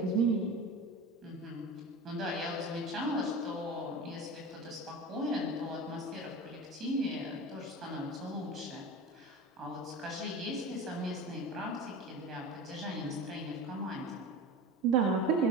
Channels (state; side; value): normal; both; correlation 0.32